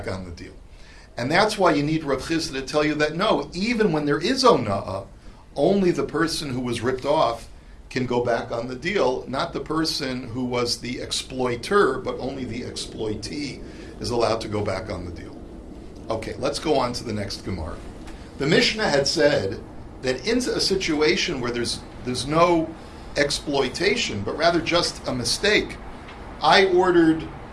on the deal. And that's why you need Rav Chisda to tell you that no, even when there is ona'ah, only the person who was ripped off can go back on the deal, not the person who was the exploiter, but only the exploitee is allowed to go back on the deal. Okay, let's go on to the next Gemara. The Mishnah had said that in a situation where there's no exploitation, but rather just a mistake, I ordered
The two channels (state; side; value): identical; both; correlation 1.00